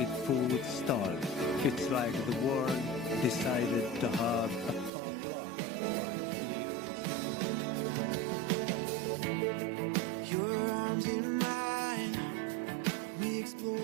food stalls. It's like the world decided to have a potluck right here in Stockholm. Your arms in mine, we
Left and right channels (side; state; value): left; drops out; at 4.9 s